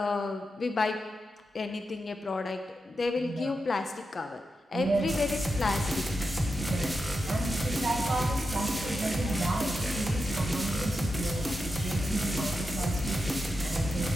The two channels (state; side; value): normal; both; correlation 0.88